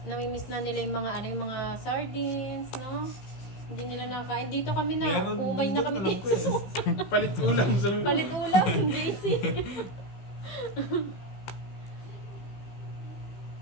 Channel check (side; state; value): right; late; 15 ms